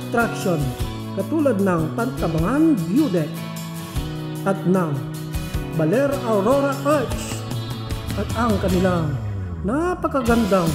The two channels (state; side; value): identical; both; correlation 1.00